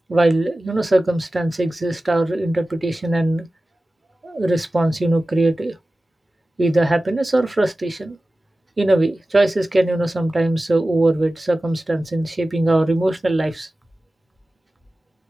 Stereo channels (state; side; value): normal; both; correlation 0.96